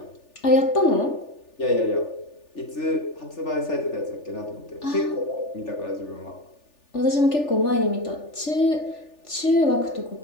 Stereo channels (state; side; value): late; right; 3.4 ms